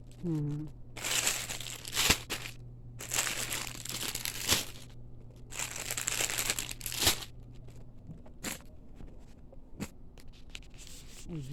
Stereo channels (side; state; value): both; identical; correlation 1.00